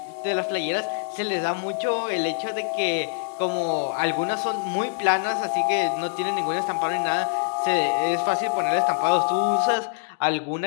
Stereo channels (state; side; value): silent; right; digital silence